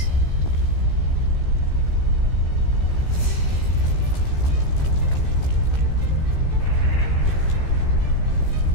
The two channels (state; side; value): late; right; 15 ms